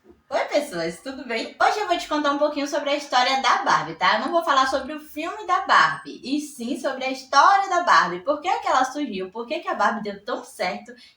Oi, pessoas, tudo bem? Hoje eu vou te contar um pouquinho sobre a história da Barbie, tá? Eu não vou falar sobre o filme da Barbie, e sim sobre a história da Barbie. Por que ela surgiu, por que a Barbie deu tão certo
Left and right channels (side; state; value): both; identical; correlation 1.00